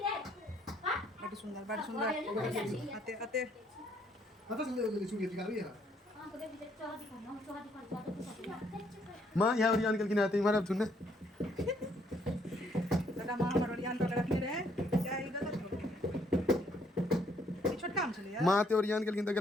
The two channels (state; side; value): normal; both; correlation 0.68